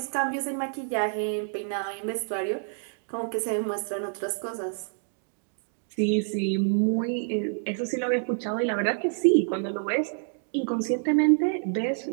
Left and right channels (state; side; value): silent; left; 59 dB below the other